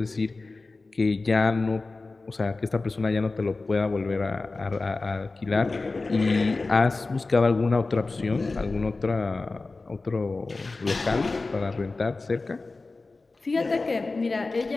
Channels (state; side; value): quieter; right; 3.6 dB